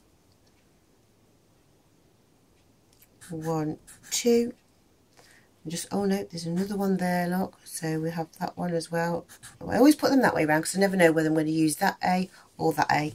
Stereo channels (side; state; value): both; identical; correlation 1.00